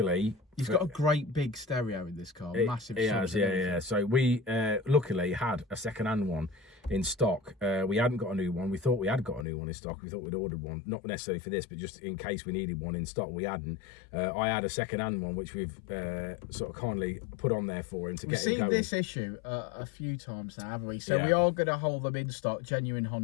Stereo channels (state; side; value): drops out; right; at 9.5 s